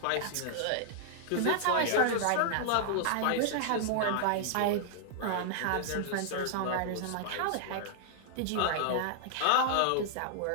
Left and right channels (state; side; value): different; both; correlation -0.01